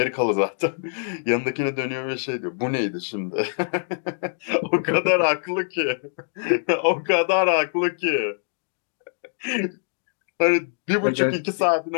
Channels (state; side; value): silent; right; digital silence